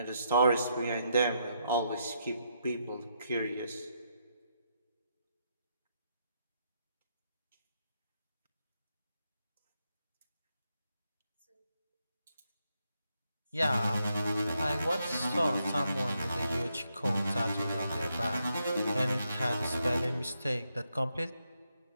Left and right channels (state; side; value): inverted; both; correlation -0.79